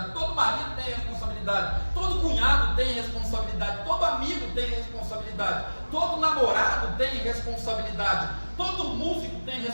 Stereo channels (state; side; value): inverted; both; correlation -1.00